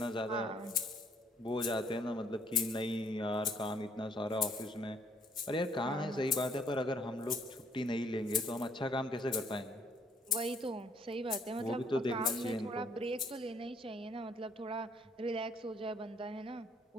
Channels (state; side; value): normal; both; correlation 0.64